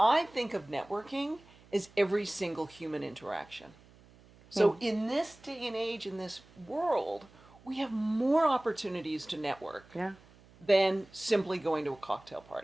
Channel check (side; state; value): right; noise; hum, 25 dB below the sound